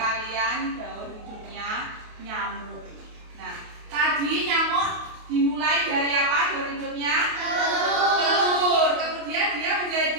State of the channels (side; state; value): left; late; 28 ms